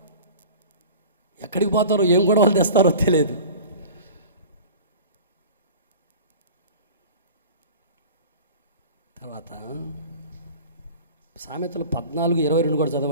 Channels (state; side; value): inverted; both; correlation -0.38